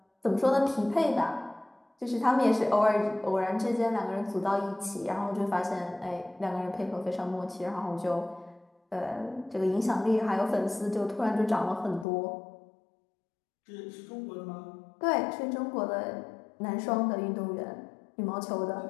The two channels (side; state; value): right; drops out; at 12.1 s